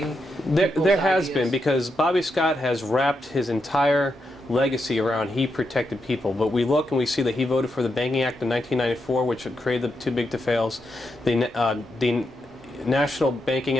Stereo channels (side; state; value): both; normal; correlation 0.84